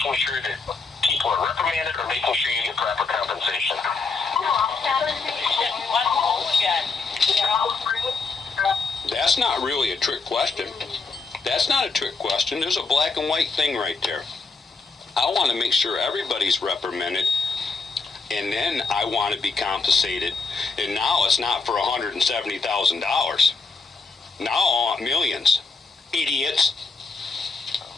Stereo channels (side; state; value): right; quieter; 4.4 dB